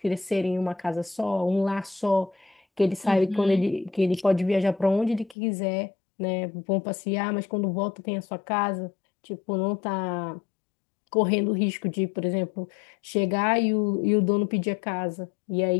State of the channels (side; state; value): right; drops out; at 5.4 s